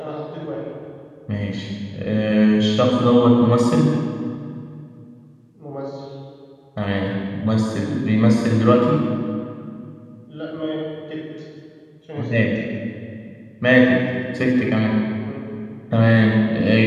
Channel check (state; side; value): identical; both; correlation 1.00